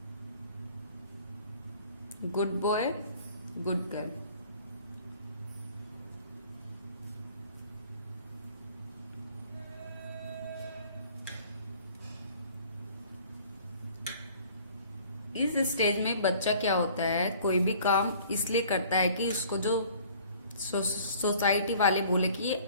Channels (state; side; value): inverted; both; correlation -0.52